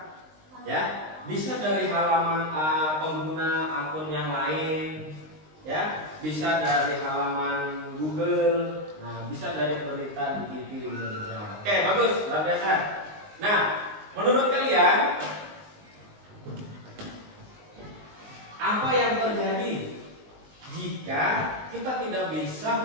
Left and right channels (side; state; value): left; late; 19 ms